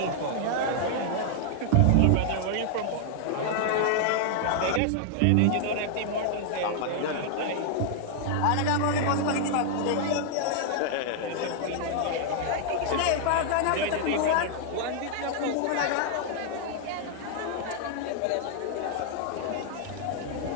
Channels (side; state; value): both; different; correlation -0.01